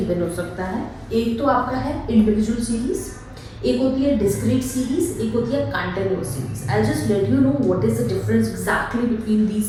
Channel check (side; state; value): both; identical; correlation 1.00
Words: हो सकता है. एक तो आपका है इंडिविजुअल सीरीज, एक होती है डिस्क्रीट सीरीज, एक होती है continuous series. I just let you know what is the difference exactly between